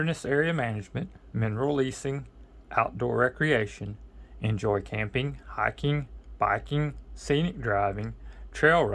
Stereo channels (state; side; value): identical; both; correlation 1.00